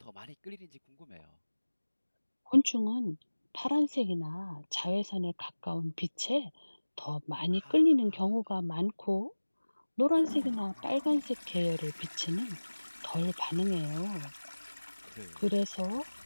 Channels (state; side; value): inverted; both; correlation -1.00